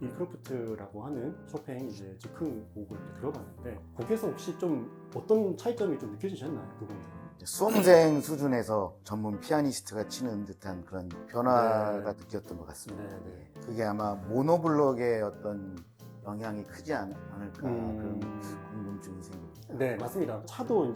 인크로프트라고 하는 쇼팽 이제 즉흥 곡을 들어봤는데, 곡에서 혹시 좀 어떤 차이점이 좀 느껴지셨나요? 그 부분들은? 수험생 수준에서 전문 피아니스트가 치는 듯한 그런 변화가 느꼈던 것 같습니다. 네. 그게 아마 모노블록의 어떤 영향이 크지 않을까 그런 궁금증이 생깁니다. 네, 맞습니다. 차도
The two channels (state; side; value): identical; both; correlation 1.00